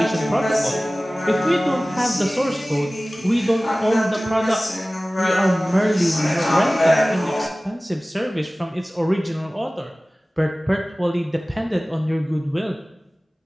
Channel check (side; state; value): both; normal; correlation 0.98